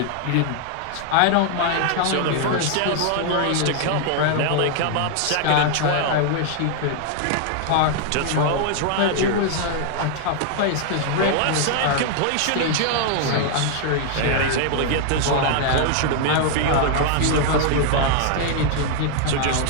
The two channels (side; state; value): both; different; correlation 0.00